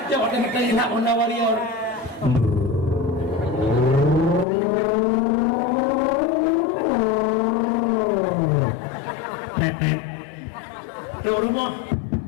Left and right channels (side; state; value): right; drops out; at 4.5 s